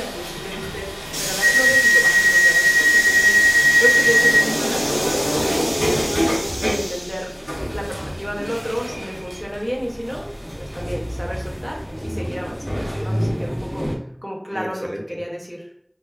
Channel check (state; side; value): identical; both; correlation 1.00